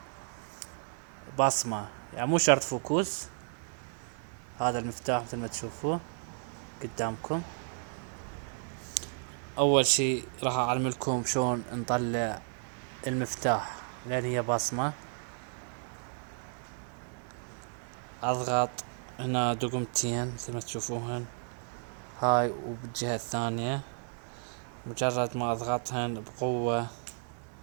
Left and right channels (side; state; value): left; silent; 56 dB below the other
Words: بصمة، يعني مو شرط فوكوس. هذا المفتاح مثل ما تشوفوه قدامكم. اول شي راح اعلملكم شلون نطلع المفتاح لان هي بصمة. اضغط هنا دقمتين مثل ما تشوفوهن، هاي وبالجهة الثانية. مجرد ما اضغطهن بقوة